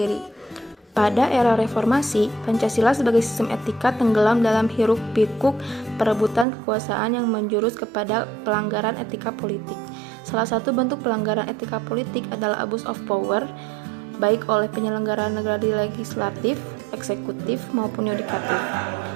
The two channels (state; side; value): drops out; left; at 6.5 s